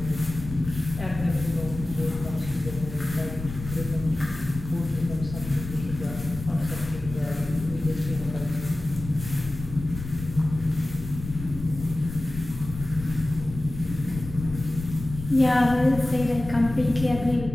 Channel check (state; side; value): noise; left; rumble, 10 dB below the sound